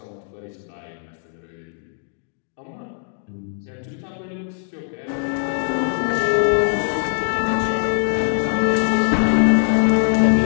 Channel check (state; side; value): silent; right; 65 dB below the other